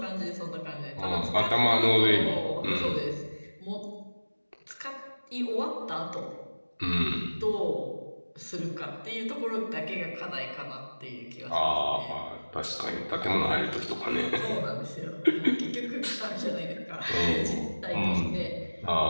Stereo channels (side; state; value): both; inverted; correlation -1.00